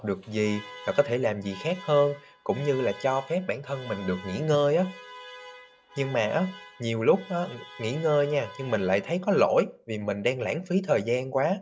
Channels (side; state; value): both; identical; correlation 1.00